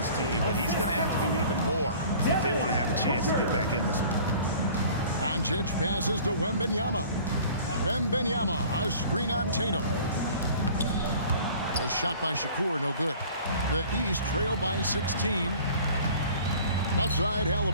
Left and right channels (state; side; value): inverted; both; correlation -0.47